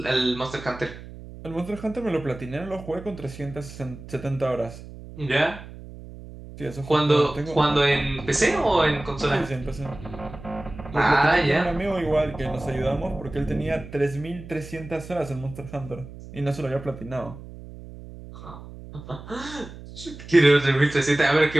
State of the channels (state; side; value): noise; right; hum, 15 dB below the sound